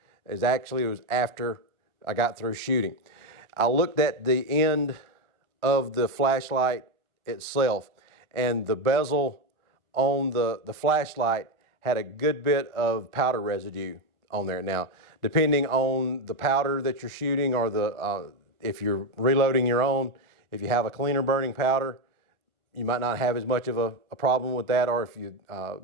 is actually it was after I got through shooting. I looked at the end of the flashlight itself, and the bezel on the flashlight had a good bit of powder residue on there. Now, depending on the powder that you're shooting, or if you're reloading your own, if you have a cleaner burning powder, you might not have as much of a problem with that. Or if you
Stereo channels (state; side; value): late; left; 1.3 ms